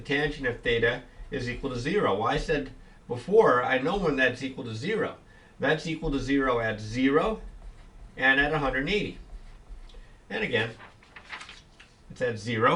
of theta is equal to 0. Well, I said before, I know when that's equal to 0. That's equal to 0 at 0 and at 180. And again, it's at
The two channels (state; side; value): identical; both; correlation 1.00